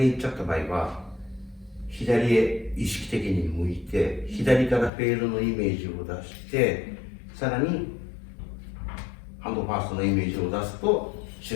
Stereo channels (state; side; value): drops out; right; at 4.9 s